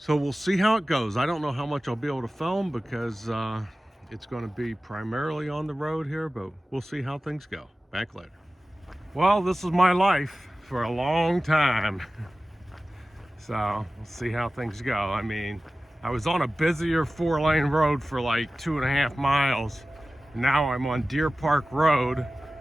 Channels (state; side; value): normal; both; correlation 0.96